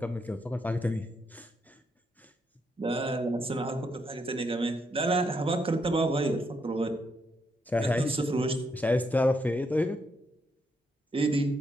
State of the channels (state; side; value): normal; both; correlation 0.78